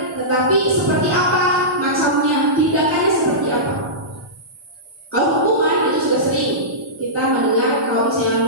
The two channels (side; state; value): both; normal; correlation -0.17